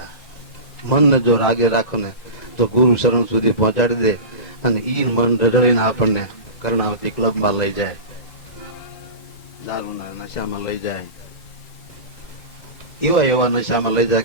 મનને જો રાગે રાખો ને તો ગુરુ શરણ સુધી પહોંચાડી દે, અને ઈ મન રડડીને આપણને કર્ણાવતી ક્લબમાં લઈ જાય, દારૂના નશામાં લઈ જાય, એવા નશામાં લઈ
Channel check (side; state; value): right; late; 2.2 ms